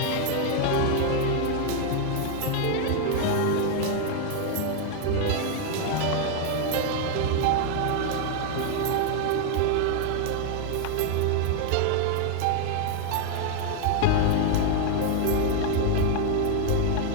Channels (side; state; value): both; different; correlation 0.00